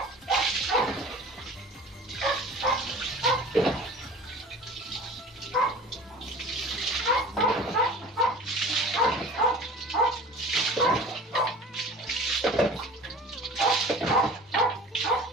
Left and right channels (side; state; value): both; normal; correlation 0.41